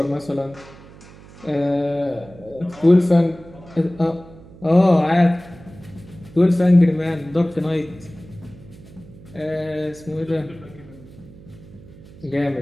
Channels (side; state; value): right; noise; hum, 20 dB below the sound